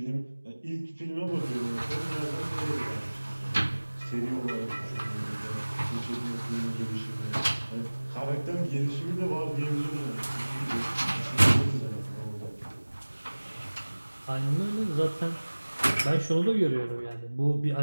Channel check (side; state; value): both; inverted; correlation -1.00